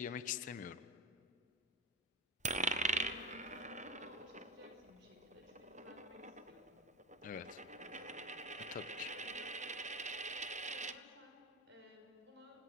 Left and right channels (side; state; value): both; normal; correlation 0.21